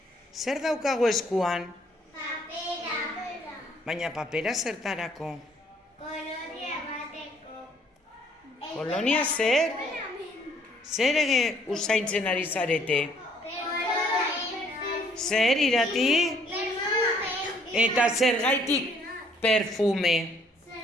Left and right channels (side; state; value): both; normal; correlation 0.63